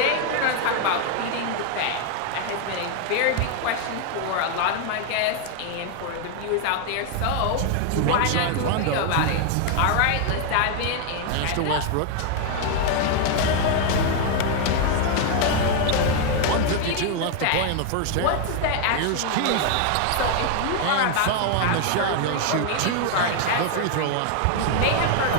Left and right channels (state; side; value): different; both; correlation 0.00